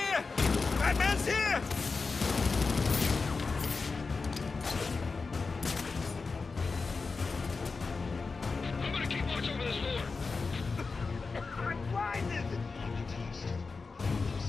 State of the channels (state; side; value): quieter; right; 4.4 dB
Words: Batman's here! I'm gonna keep watch over this floor. I'm blinded!